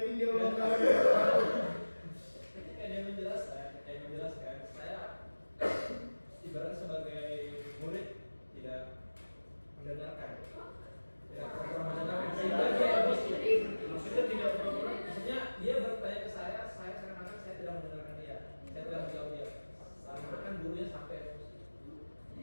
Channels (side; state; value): both; inverted; correlation -1.00